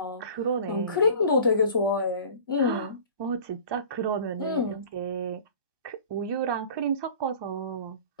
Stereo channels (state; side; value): inverted; both; correlation -0.43